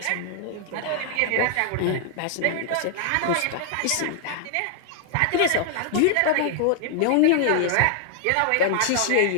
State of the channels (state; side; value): different; both; correlation 0.00